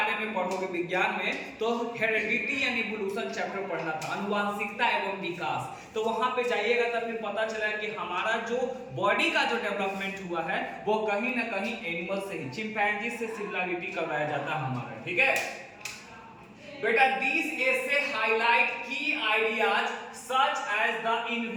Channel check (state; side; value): identical; both; correlation 1.00